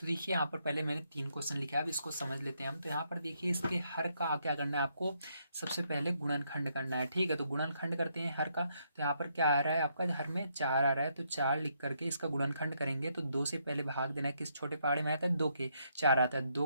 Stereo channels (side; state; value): both; inverted; correlation -0.75